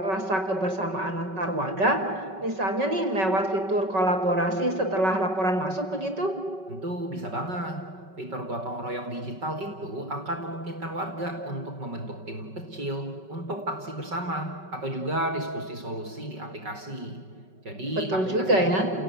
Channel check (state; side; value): late; left; 5.3 ms